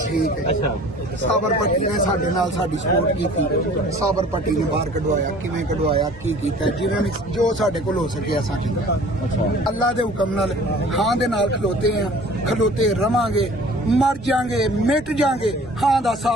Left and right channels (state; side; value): normal; both; correlation 0.48